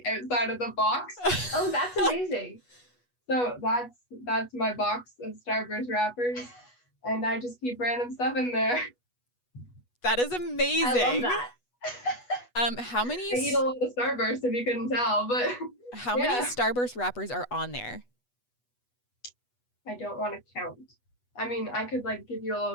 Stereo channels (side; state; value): right; late; 8.2 ms